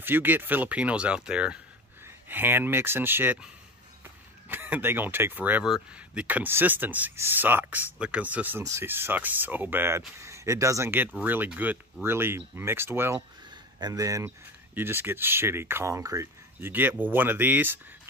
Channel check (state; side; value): normal; both; correlation 0.28